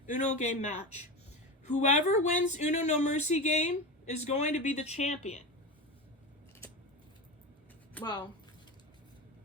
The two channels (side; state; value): both; normal; correlation 0.22